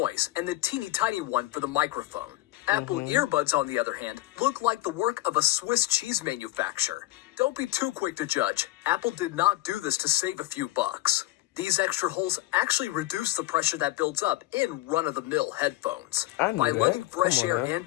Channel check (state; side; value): quieter; right; 17.4 dB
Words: and the teeny tiny one for the microphone. Apple earbuds, on the other hand, look like the work of a Swiss cheese manufacturer. Don't be too quick to judge. Apple did not do this to save a few bucks. These extra holes actually reduce the pressure that builds up in run-of-the-mill headphones. By letting fresh air in